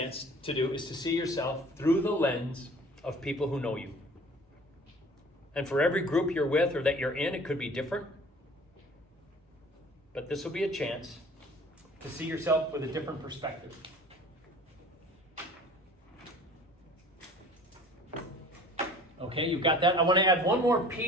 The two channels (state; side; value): normal; both; correlation 0.47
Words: to do is to see yourself through the lens of people who know you. And for every group you're with or that you're in, it could be different. But this will be a chance to see yourself with a different perspective. Okay, you've got that. I want to add one more